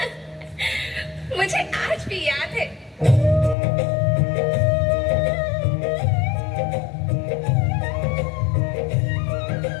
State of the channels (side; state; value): right; drops out; at 3.6 s